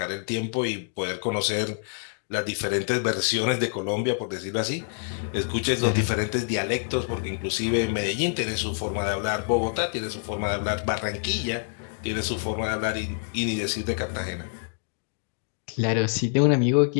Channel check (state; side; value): silent; right; digital silence